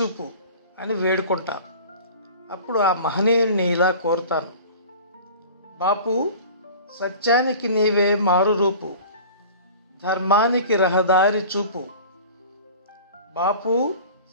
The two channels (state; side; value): inverted; both; correlation -0.41